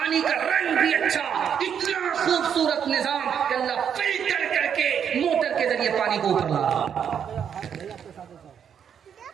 का रंग भी अच्छा, इतना खूबसूरत निजाम कि अल्लाह फिल्टर करके मोटर के जरिए पानी को ऊपर ला रहा।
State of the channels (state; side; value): quieter; left; 8.1 dB